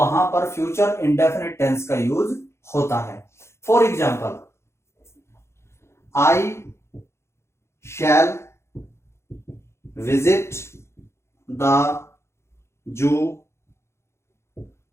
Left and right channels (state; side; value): late; right; 0.13 ms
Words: पर फ्यूचर इंडेफिनिट टेंस का यूज होता है। For example, I shall visit the zoo